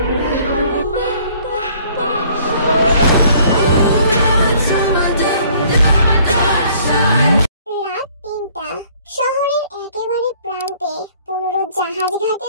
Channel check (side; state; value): both; inverted; correlation -0.58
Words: রাত ৩টা। শহরের একেবারে প্রান্তে ১৫ জাহাজ